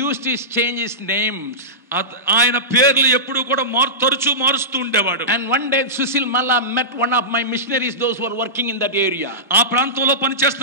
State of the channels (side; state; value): both; normal; correlation -0.17